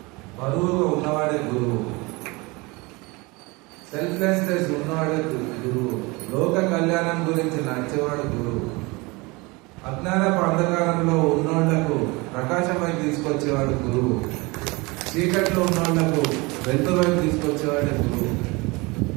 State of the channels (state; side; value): quieter; left; 25.2 dB